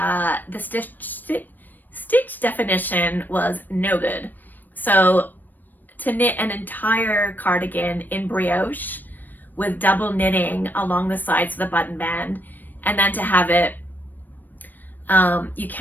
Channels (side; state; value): right; late; 0.089 ms